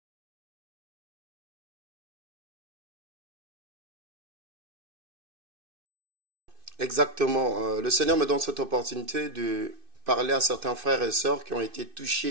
Exactement. Le Seigneur me donne cette opportunité de parler à certains frères et sœurs qui ont été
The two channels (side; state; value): left; late; 2.6 ms